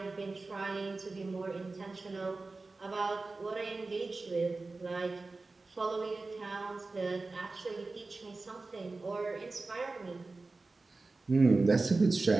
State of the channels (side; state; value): left; quieter; 3.5 dB